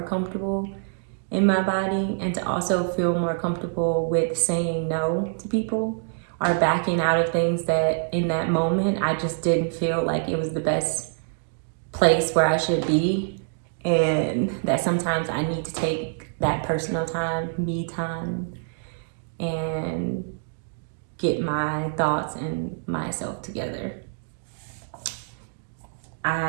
comfortable in my body, and to also feel more comfortable with saying no to people or backing out of things that in that moment I just didn't feel like it was the best place where I should be. And that sometimes I need to take that personal time, me time, and get my thoughts and myself together.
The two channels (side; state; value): left; silent; digital silence